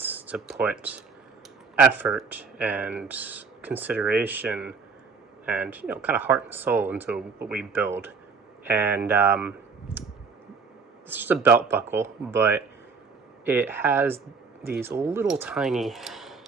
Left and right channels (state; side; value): quieter; left; 5.0 dB